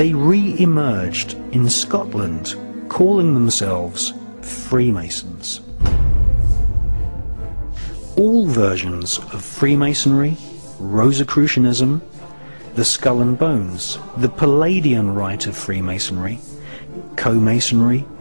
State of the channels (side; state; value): both; inverted; correlation -1.00